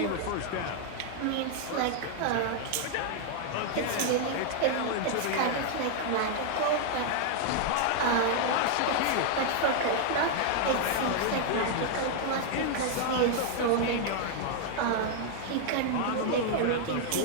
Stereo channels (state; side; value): different; both; correlation 0.00